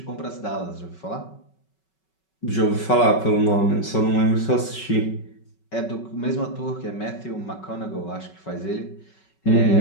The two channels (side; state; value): right; late; 5.3 ms